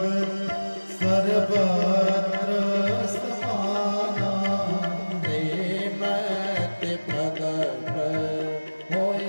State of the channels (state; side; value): inverted; both; correlation -1.00